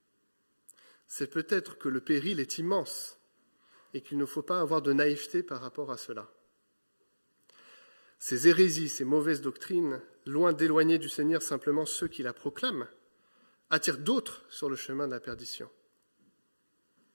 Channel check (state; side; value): inverted; both; correlation -1.00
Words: C'est peut-être que le péril est immense et qu'il ne faut pas avoir de naïveté par rapport à cela. Ces hérésies, ces mauvaises doctrines, loin d'éloigner du Seigneur simplement ceux qui la proclament, attirent d'autres sur le chemin de la perdition.